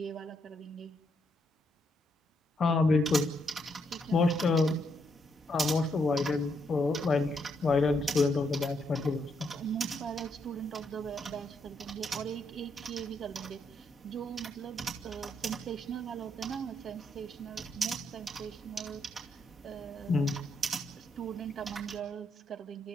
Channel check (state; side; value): normal; both; correlation 0.77